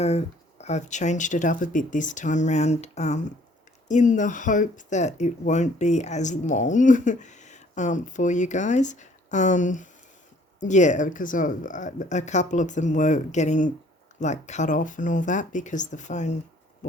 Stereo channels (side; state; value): both; normal; correlation 0.59